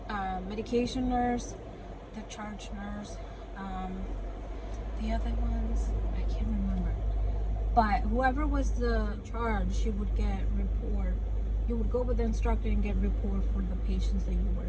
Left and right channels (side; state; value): both; identical; correlation 1.00